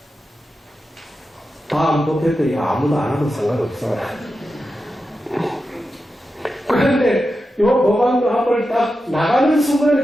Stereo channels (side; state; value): both; normal; correlation 0.90